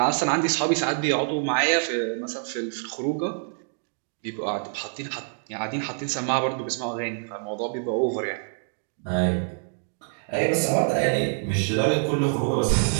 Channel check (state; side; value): silent; left; 61 dB below the other